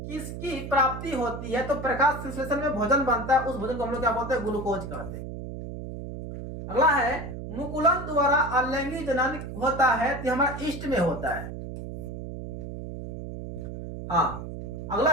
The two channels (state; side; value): noise; right; hum, 8 dB below the sound